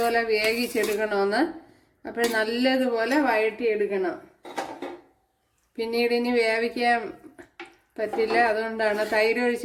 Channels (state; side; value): identical; both; correlation 1.00